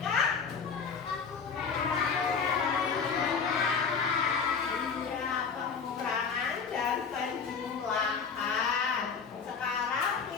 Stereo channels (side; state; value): right; quieter; 5.8 dB